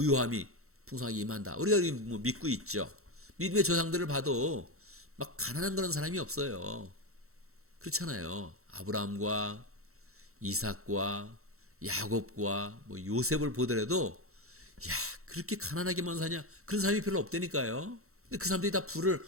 풍성하게 임한다. 우리가 뭐 믿고 있죠. 믿음의 조상들을 봐도 막 가난한 그런 사람이 없어요. 그렇잖아요. 아브라함과 이삭과 야곱과 뭐 요셉을 보더라도 야, 그렇게 가난하게만 사냐? 그런 사람이 별로 없다니까요. 근데 그 사람들이 다 부를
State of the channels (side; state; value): left; late; 0.63 ms